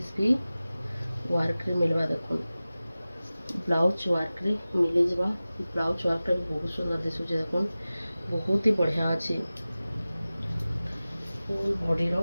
भी वर्क रे मिलवा देखुन ब्लाउज वर्क रे मिल जावा ब्लाउज वर्क टा भी बहुत सुंदर दिसुचे देखुन बहुत ही बढ़िया अच्छी फुल बॉडी रो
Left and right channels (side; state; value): both; inverted; correlation -0.97